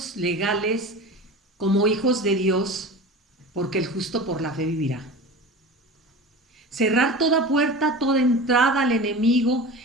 legales como hijos de Dios, porque el justo por la fe vivirá. Cerrar toda puerta, toda entrada al enemigo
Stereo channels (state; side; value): normal; both; correlation 0.33